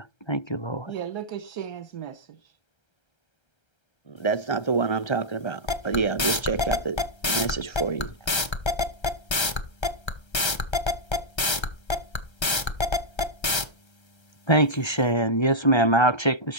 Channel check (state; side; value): late; right; 1.3 ms